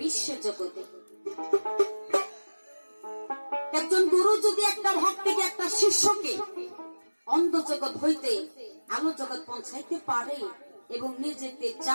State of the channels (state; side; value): inverted; both; correlation -1.00